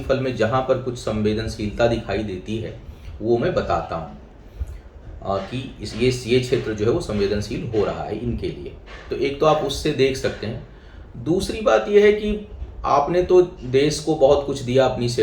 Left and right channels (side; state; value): both; identical; correlation 1.00